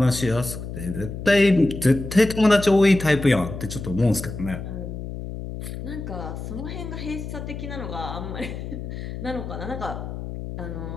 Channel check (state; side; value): noise; left; hum, 8 dB below the sound